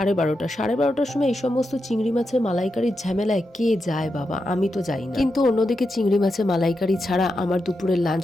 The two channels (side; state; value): both; normal; correlation 0.87